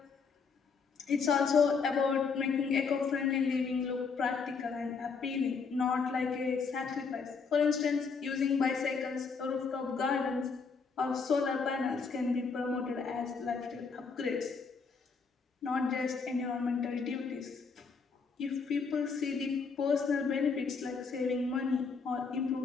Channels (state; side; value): quieter; right; 5.2 dB